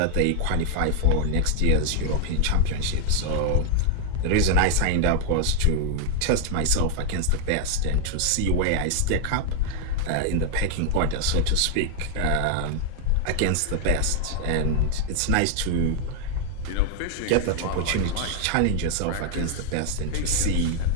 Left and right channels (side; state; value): both; different; correlation 0.00